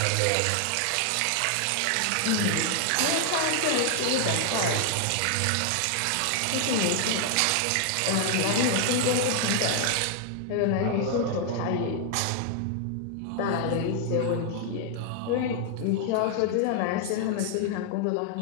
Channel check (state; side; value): different; both; correlation 0.00